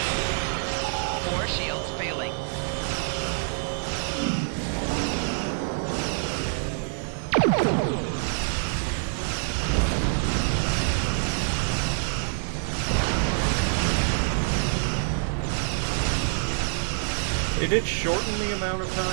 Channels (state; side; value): silent; left; digital silence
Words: Four shields failing. It did shorten the amount of time